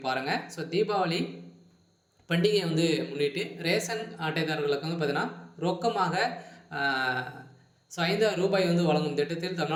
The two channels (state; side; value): identical; both; correlation 1.00